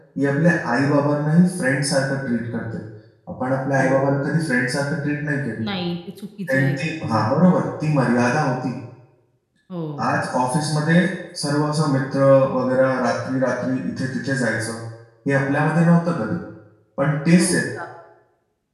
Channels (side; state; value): both; identical; correlation 1.00